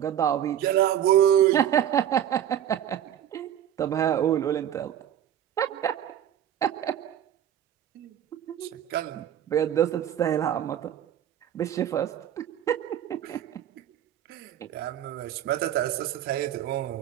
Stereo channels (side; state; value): left; quieter; 10.5 dB